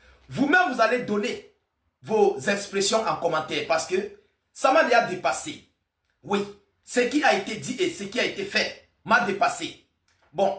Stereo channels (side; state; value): both; identical; correlation 1.00